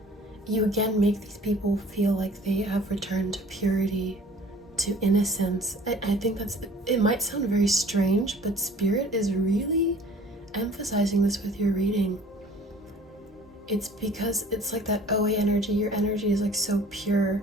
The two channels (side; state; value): both; normal; correlation 0.50